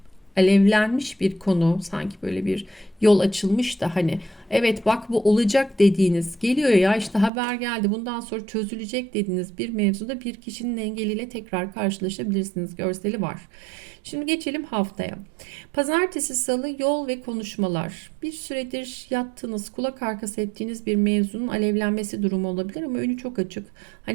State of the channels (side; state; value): left; drops out; at 7.3 s